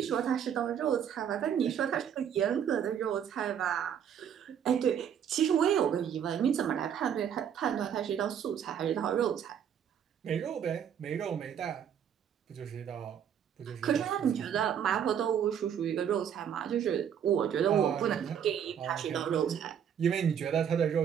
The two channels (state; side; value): quieter; left; 8.7 dB